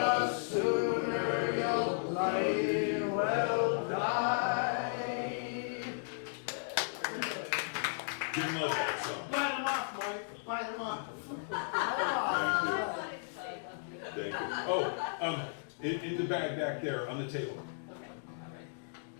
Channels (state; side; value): silent; right; digital silence